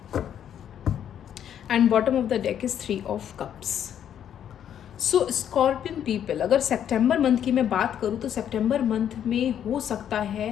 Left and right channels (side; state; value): right; quieter; 9.6 dB